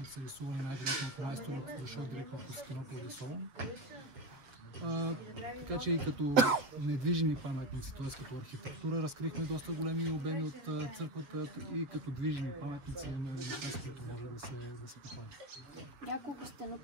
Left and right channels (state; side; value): late; left; 7.2 ms